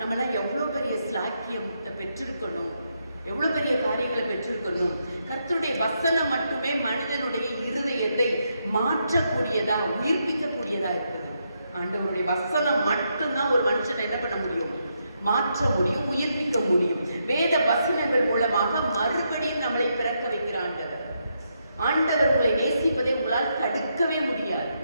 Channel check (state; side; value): inverted; both; correlation -0.80